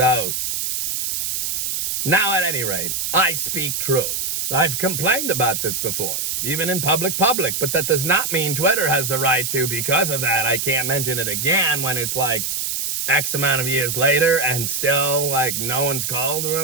now, at any rate, I speak true. I've complained about this before, even in public, but that does not mean Twitter has the right to, because of that, I can't mention it again when it's X amount of years later and still, no one's called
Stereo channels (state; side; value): noise; right; hiss, 1 dB below the sound